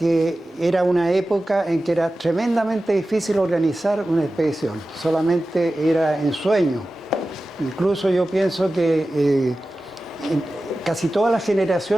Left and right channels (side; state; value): both; normal; correlation 0.95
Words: era una época en que era tremendamente difícil organizar una expedición, solamente era en sueño. Incluso yo pienso que casi todas las